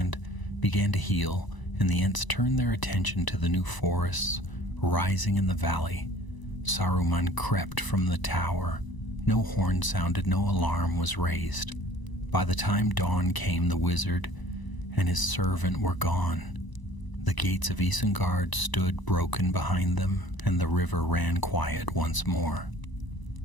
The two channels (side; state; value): right; late; 1.0 ms